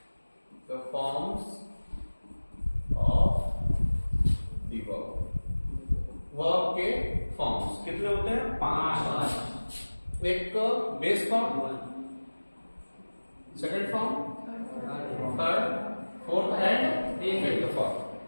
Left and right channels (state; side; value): inverted; both; correlation -1.00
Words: the forms of the verb. Verb के फॉर्म्स कितने होते हैं? 5। एक base form, second form, third, fourth and fifth form.